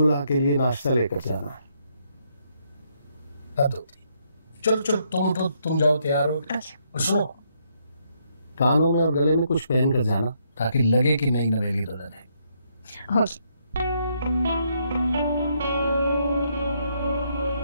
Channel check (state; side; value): inverted; both; correlation -0.74